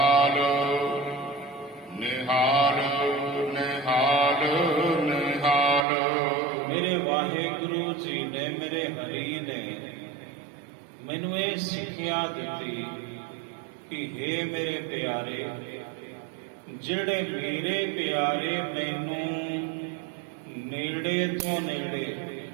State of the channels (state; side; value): drops out; left; at 5.9 s